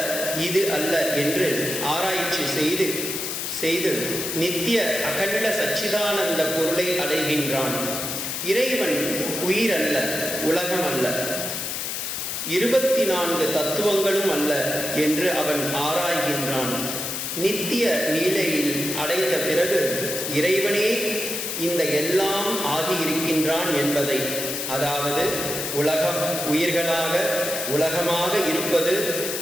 இது அல்ல என்று ஆராய்ச்சி செய்து நித்திய அகண்ட சச்சிதானந்த பொருளை அடைகின்றான். இறைவன் உயிர் அல்ல, உலகம் அல்ல, 24 தத்துவங்களும் அல்ல என்று அவன் ஆராய்கின்றான். நித்திய நீலையில் அடைந்த பிறகு இறைவனே இந்த எல்லாம் ஆகியிருக்கின்றான் என்பதை, அதாவது உலகம் உயிர்களாக உலகமாக இருப்பது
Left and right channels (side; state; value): left; noise; hiss, 3 dB below the sound